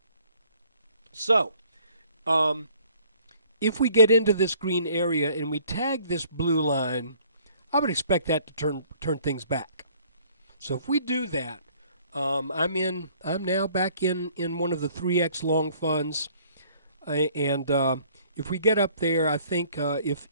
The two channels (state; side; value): inverted; both; correlation -0.58